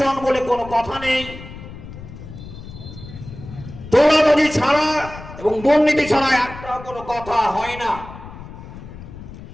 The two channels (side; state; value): left; noise; rumble, 14 dB below the sound